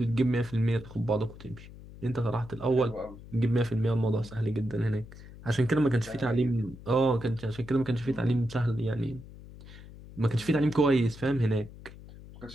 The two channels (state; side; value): noise; left; hum, 17 dB below the sound